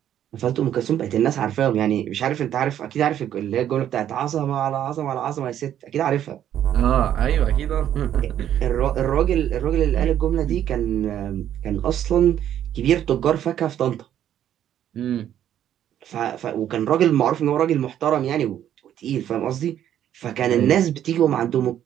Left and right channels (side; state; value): left; quieter; 10.7 dB